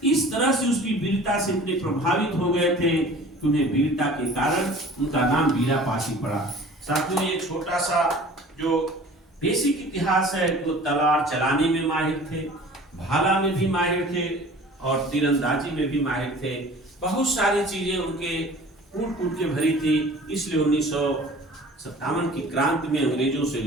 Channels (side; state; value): both; normal; correlation 0.45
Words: इस तरह से उसकी वीरता से इतने प्रभावित हो गए थे कि उन्हें वीरता के कारण उनका नाम वीरापासी पड़ा। साथियों, ये छोटा सा जो बेसिक इतिहास है, तो तलवार चलाने में माहिर थे, भाला में भी माहिर थे और तीरंदाजी में भी माहिर थे। बहुत सारी चीजें उनके कूट के भरी थी। इसलिए 1957 की क्रांति में अंग्रेजों से